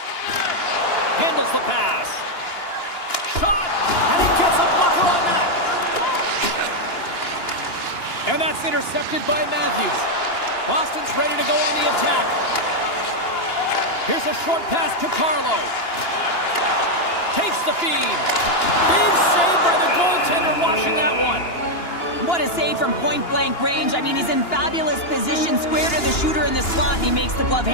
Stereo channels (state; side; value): late; right; 2.9 ms